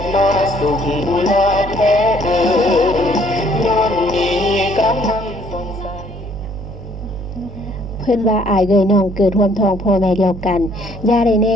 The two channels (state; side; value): noise; right; hum, 11 dB below the sound